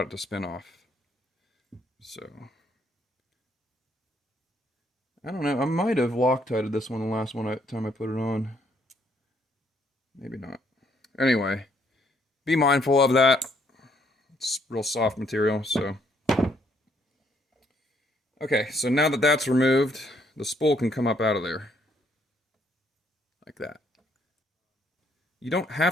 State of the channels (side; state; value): both; normal; correlation 0.69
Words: it to spin off. So I don't know. I might have Loctited this one the last time I put it on. Maybe not. Anyway, be mindful of that. It's real soft material, so. Okay, so now that that's removed, the spool can come up out of there. Like that. You don't